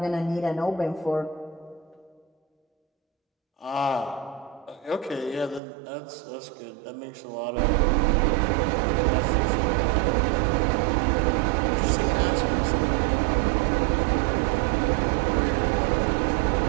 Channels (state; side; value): drops out; left; at 5.6 s